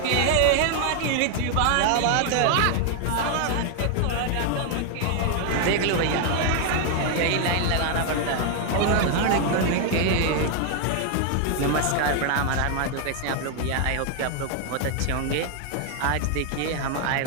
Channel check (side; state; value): both; different; correlation 0.00